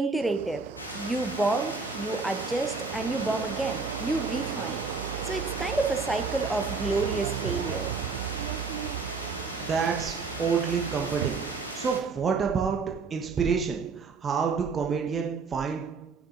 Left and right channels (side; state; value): left; quieter; 4.4 dB